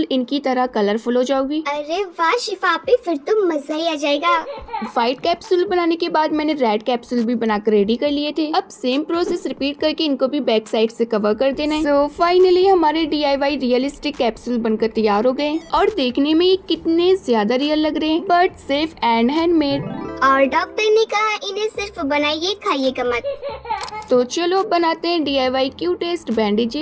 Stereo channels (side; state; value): both; identical; correlation 1.00